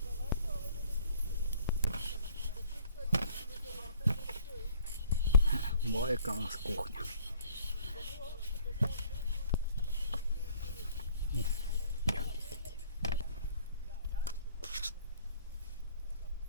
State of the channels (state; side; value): inverted; both; correlation -0.57